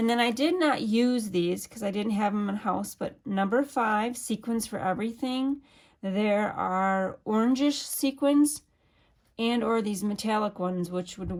then I did not use these because I didn't have them in house, but number 5, sequins for everything. There are orangish sequins and or these metallic ones, which would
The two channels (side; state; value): both; identical; correlation 1.00